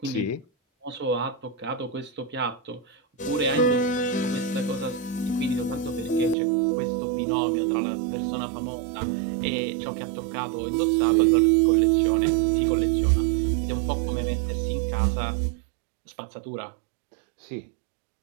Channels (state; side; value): drops out; left; at 6.4 s